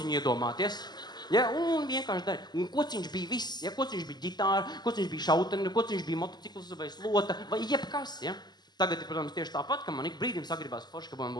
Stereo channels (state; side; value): late; right; 0.21 ms